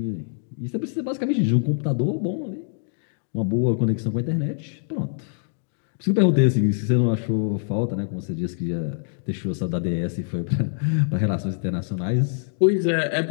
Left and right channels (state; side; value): silent; right; digital silence